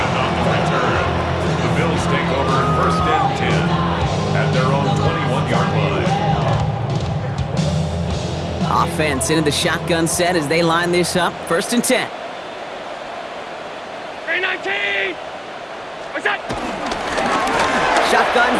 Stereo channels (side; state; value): both; identical; correlation 1.00